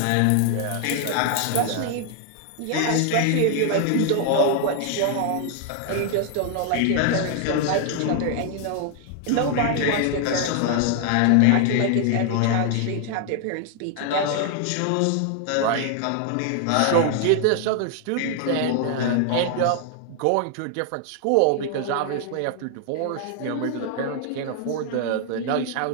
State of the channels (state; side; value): different; both; correlation 0.00